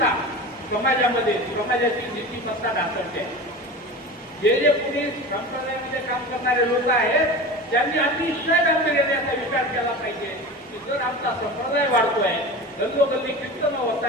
समाजामध्ये समाजाची नीतिमत्ता ढासळते. जे पुढे संप्रदायामध्ये काम करणारे लोक आहेत त्यांनी अतिशय गांभीर्याने याचा विचार केला पाहिजे की जर आमचा संप्रदाय वाढतोय गल्लोगल्ली कीर्तन होत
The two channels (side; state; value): both; normal; correlation 0.31